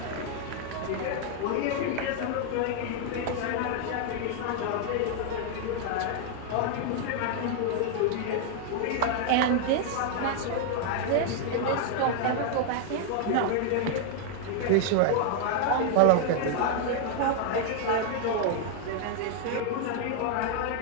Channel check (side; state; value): both; different; correlation 0.00